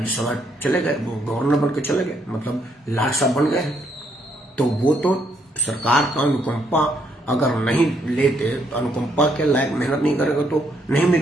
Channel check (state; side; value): normal; both; correlation 0.73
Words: चले गए, वो गवर्नर बन के चले गए, मतलब लाट साहब बन गए। तो वो तो सरकार का अनुकंपा अगर नहीं लेते, अनुकंपा के लायक मेहनत नहीं करेगा तो नहीं